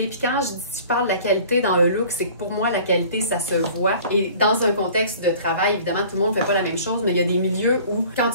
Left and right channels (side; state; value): both; inverted; correlation -0.47